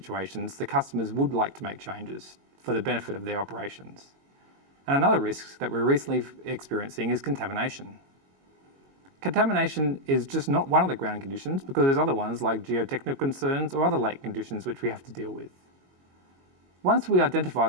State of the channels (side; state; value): left; late; 22 ms